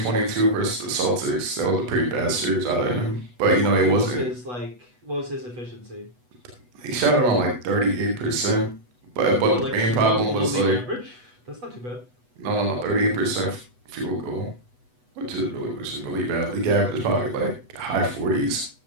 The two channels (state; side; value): late; left; 8.1 ms